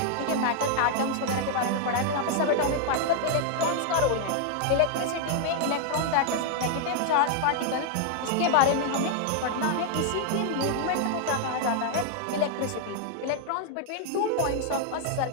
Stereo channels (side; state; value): both; different; correlation 0.00